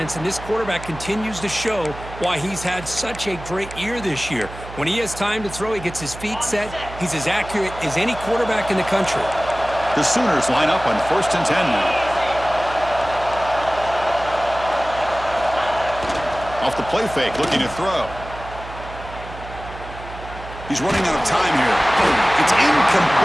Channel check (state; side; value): noise; right; hum, 13 dB below the sound